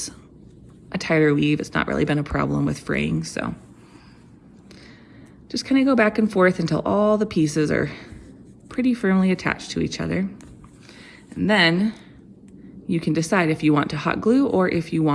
a tighter weave. It's not really been a problem with fraying, so just kind of go back and forth until all the pieces are pretty firmly attached to each other. And then you can decide if you want to hot glue or if you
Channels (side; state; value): both; identical; correlation 1.00